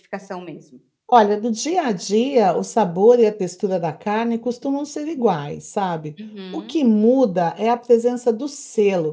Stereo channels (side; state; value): both; identical; correlation 1.00